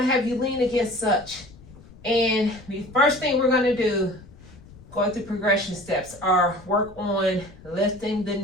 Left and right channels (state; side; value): noise; left; rumble, 21 dB below the sound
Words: have you lean against such. And the first thing we're going to do, going through progression steps, are work on lifting the